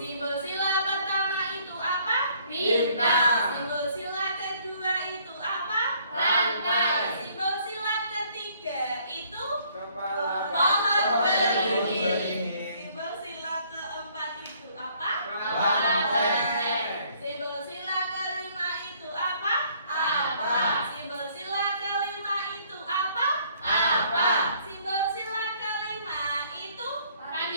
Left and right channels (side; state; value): both; inverted; correlation -0.62